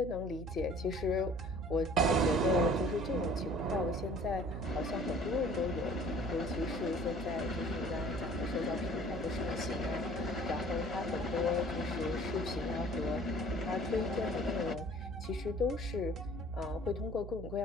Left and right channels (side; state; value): right; noise; hum, 9 dB below the sound